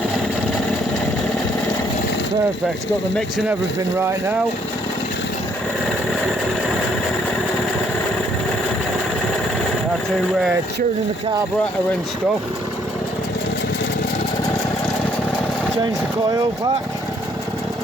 Perfect, it's got the mix and everything right now. I had to tune in the carburetor and stuff. Change the coil pack.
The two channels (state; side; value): normal; both; correlation 0.67